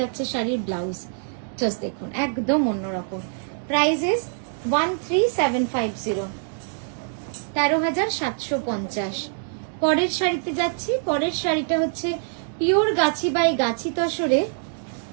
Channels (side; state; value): left; silent; digital silence